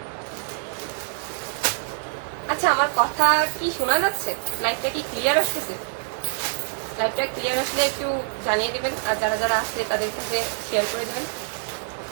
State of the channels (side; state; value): left; silent; digital silence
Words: আচ্ছা, আমার কথা কি শোনা যাচ্ছে? লাইভটা কি ক্লিয়ার আসতেছে? লাইভটা ক্লিয়ার আসলে একটু জানিয়ে দিবেন, আর যারা যারা আসছে তাদের সাথে শেয়ার করে দেবেন।